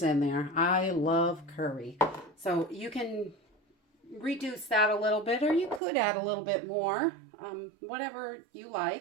in there. I love curry. So you can reduce that a little bit, or you could add a little bit more, whatever you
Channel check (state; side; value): drops out; left; at 5.8 s